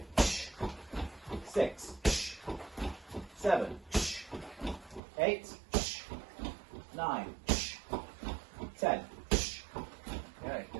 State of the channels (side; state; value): left; drops out; at 5.0 s